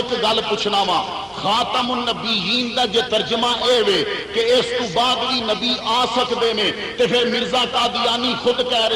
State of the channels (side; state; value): both; identical; correlation 1.00